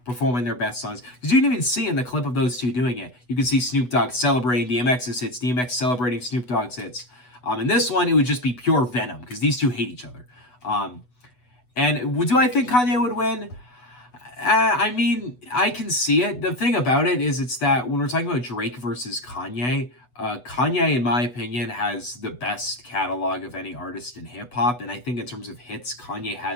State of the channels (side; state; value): right; late; 8.1 ms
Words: performing their best songs. Because you can even see in the clip of those two doing it, you can see Snoop Dogg celebrating DMX's hits, DMX celebrating Snoop Dogg's hits. In this one, it would just be pure venom, because these two hate each other. And do I think Kanye would win? I mean, I can see it. The thing about it is it's that when we're talking about Drake versus Kanye, Kanye, in my opinion, has the best catalog of any artist in hip-hop. And I think in terms of hits, Kanye